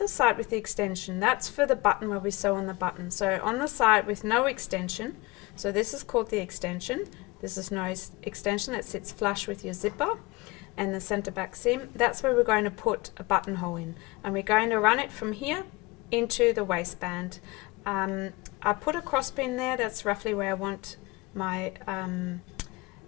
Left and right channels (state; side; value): quieter; right; 23.4 dB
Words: side with the extension. That's for the button where we sew on the button. So on the side with no extension, so this is called the extension. This is no extension that sits flush with your zipper and the center back seam. That's where we're going to put a buttonhole in, and we're going to run it from here into the waistband. I put a cross pin there. That's roughly where I want my